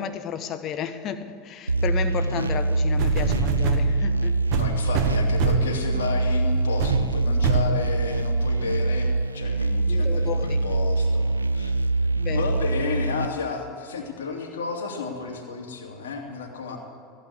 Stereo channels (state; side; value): inverted; both; correlation -0.67